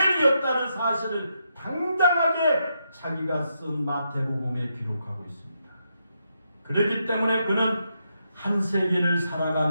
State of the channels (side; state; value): both; inverted; correlation -0.81